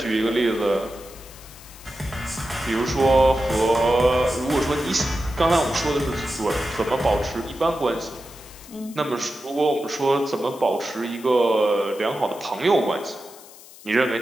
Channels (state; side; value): noise; left; hiss, 20 dB below the sound